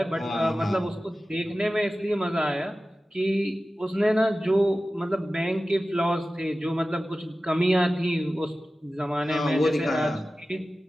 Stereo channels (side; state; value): both; normal; correlation 0.95